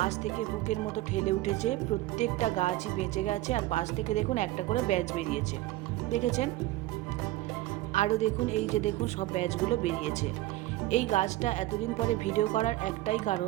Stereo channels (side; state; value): left; quieter; 16.9 dB